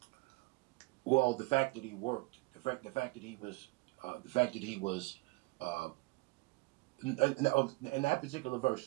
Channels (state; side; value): quieter; left; 24.6 dB